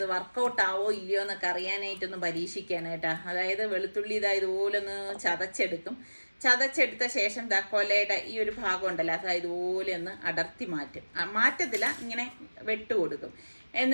വർക്കൗട്ട് ആവോ ഇല്ലയോ എന്നൊക്കെ അറിയാനായിട്ടൊന്ന് പരീക്ഷിക്കുകയാണ് കേട്ടോ. അതായത് വെളുത്തുള്ളി ഇതുപോലെ ഒന്ന് ചതച്ചെടുത്ത ശേഷം കൊലയുടെ ഈ ഒരു ഭാഗം ഉണ്ടല്ലോ അത് ഇതുപോലെ ഒന്ന് അടർത്തി മാറ്റത്തില്ല, ഇങ്ങനെ വെട്ടുകൊടുക്കും.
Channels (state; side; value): inverted; both; correlation -1.00